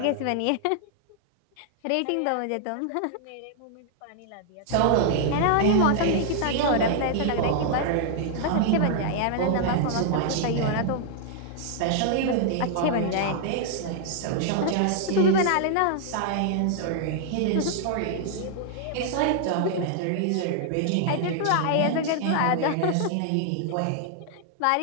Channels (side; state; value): both; different; correlation -0.01